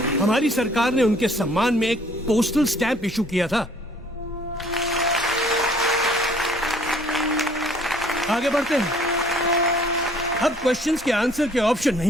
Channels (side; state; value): both; normal; correlation 0.58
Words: हमारी सरकार ने उनके सम्मान में एक पोस्टल स्टैंप इशू किया था। आगे बढ़ते हैं। अब क्वेश्चंस के आंसर के ऑप्शन